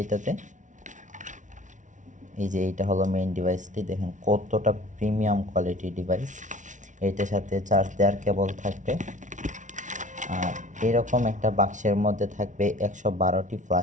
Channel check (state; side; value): late; left; 0.37 ms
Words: এটাতে। এই যে এইটা হলো মেইন ডিভাইসটি, দেখেন কতটা প্রিমিয়াম কোয়ালিটি ডিভাইস। এইটার সাথে চার্জ দেওয়ার কেবল থাকবে, আর এরকম একটা বাক্সের মধ্যে থাকবে 112টি